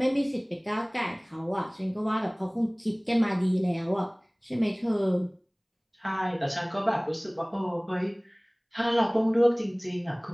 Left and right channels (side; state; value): both; identical; correlation 1.00